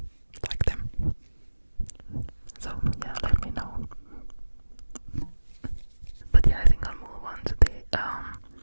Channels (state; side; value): inverted; both; correlation -1.00